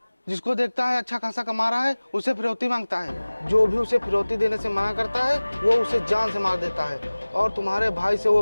जिसको देखता है अच्छा खासा कमा रहा है उसे फिरौती मांगता है। जो भी उसे फिरौती देने से मना करता है वो उसे जान से मार देता है। और तुम्हारे भाई से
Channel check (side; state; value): both; inverted; correlation -1.00